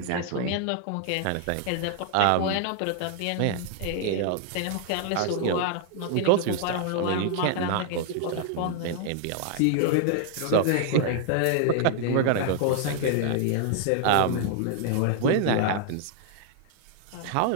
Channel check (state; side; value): different; both; correlation 0.00